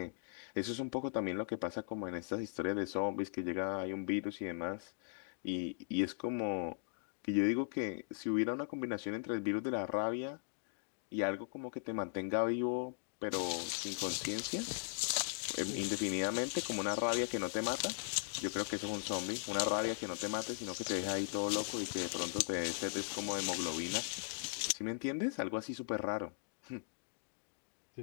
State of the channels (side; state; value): right; silent; digital silence